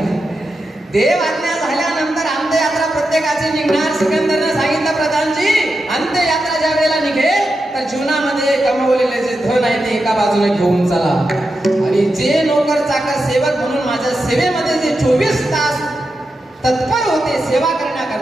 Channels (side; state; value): both; normal; correlation 0.88